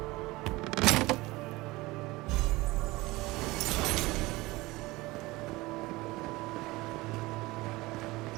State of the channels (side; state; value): left; quieter; 20.8 dB